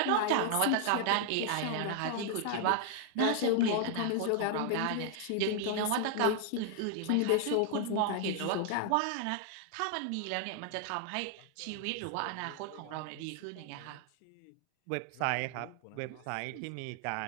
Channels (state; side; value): different; both; correlation 0.00